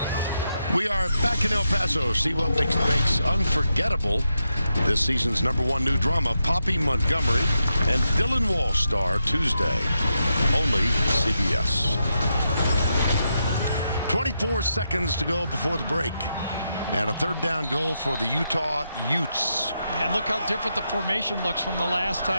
We are back in El Paso. See what makes unforgettable this season's #1 new drama, Poppy Montgomery and Dylan Walsh star Tuesday. Only CBS. 24 seconds to go before the break. And a third down goal for the Utah Utes. And look how different the formation looks from the last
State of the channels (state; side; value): inverted; both; correlation -0.84